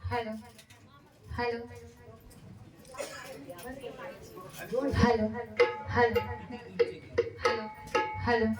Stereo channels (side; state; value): both; identical; correlation 1.00